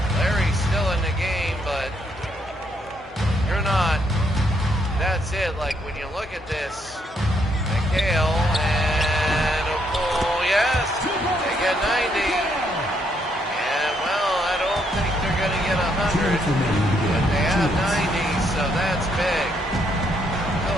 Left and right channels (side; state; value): both; normal; correlation 0.73